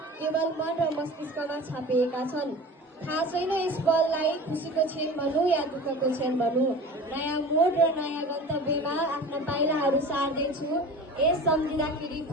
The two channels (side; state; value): both; normal; correlation 0.37